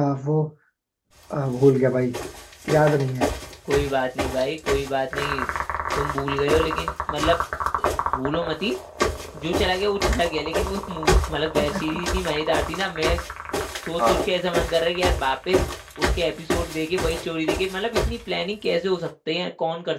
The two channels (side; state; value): both; identical; correlation 1.00